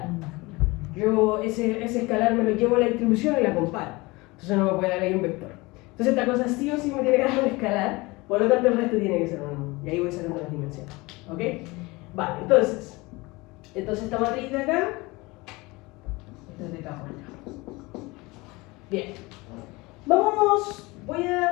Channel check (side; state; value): right; quieter; 23.4 dB